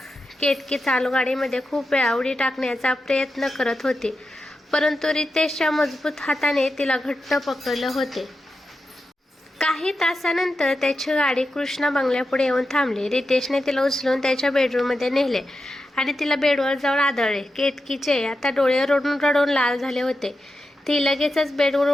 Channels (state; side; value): normal; both; correlation 0.89